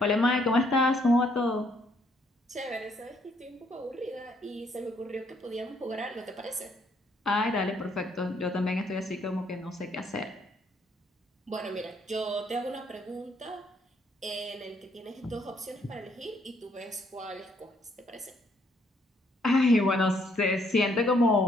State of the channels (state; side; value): normal; both; correlation 0.69